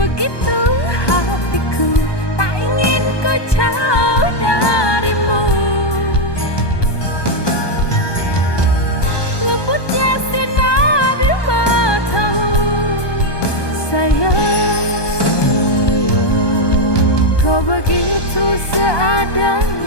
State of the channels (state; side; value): late; right; 1.2 ms